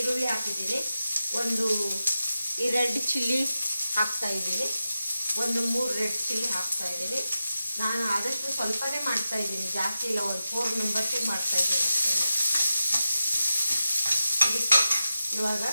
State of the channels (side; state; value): both; inverted; correlation -0.91